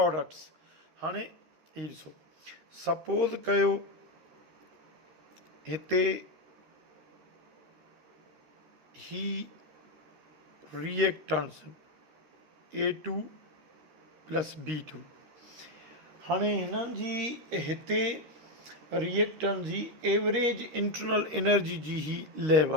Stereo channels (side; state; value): left; late; 13 ms